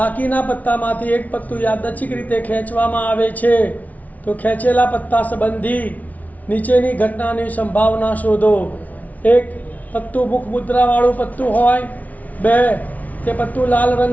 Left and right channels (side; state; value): right; late; 0.072 ms